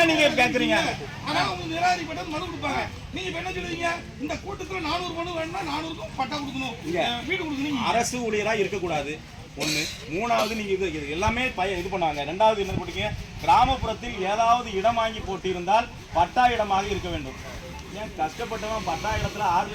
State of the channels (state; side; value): identical; both; correlation 1.00